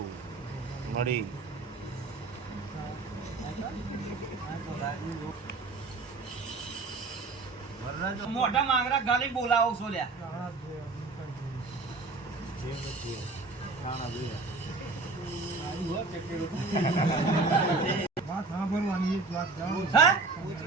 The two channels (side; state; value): left; quieter; 3.8 dB